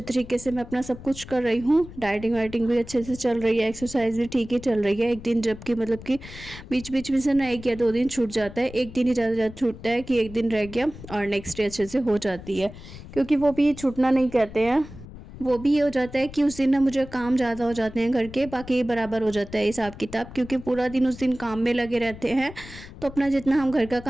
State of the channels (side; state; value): left; noise; rumble, 15 dB below the sound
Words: तरीके से मैं अपना सब कुछ कर रही हूँ। डाइटिंग वाइटिंग भी अच्छे से चल रही है, एक्सरसाइज भी ठीक ही चल रही है। एक दिन जबकि मतलब कि बीच बीच में से ना 1 या 2 दिन छूट जाता है, एक दिन ही ज़्यादा छूटता है कि एक दिन रह गया और नेक्स्ट डे अच्छे से हो जाती है, क्योंकि वो भी छूटना नहीं कहते हैं। वो भी ये हो जाता है कि उस दिन ना मुझे काम ज़्यादा हो जाते हैं घर के, बाकी बराबर हो जाता है हिसाब किताब, क्योंकि पूरा दिन उस दिन काम में लगे रहते हैं। तो अपना जितना हम घर का